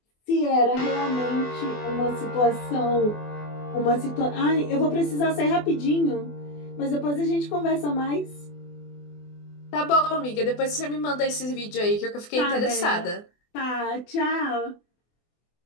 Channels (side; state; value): right; late; 24 ms